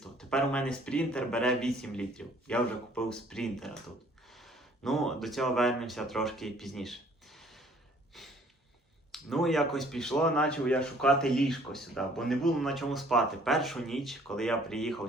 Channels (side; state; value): both; normal; correlation 0.58